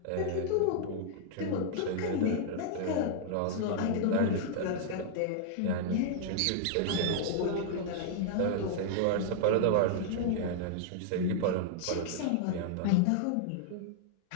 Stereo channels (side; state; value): both; different; correlation -0.01